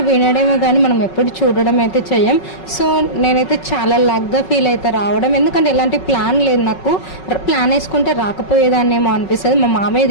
వినడమే కానీ మనం ఎప్పుడు చూడడం అయితే చెయ్యం. సో నేనైతే చాలా లక్గా ఫీల్ అయితే రావడం, ఎందుకంటే ఎలాంటి ప్లాన్ లేదు నాకు. ప్లాన్ వేసుకుంటే రాకపోయేదాన్నేమో అనిపిస్తుంది. మా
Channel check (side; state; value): right; late; 5.4 ms